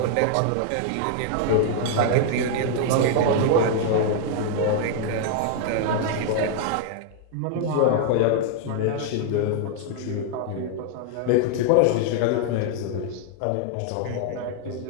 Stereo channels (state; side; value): different; both; correlation 0.00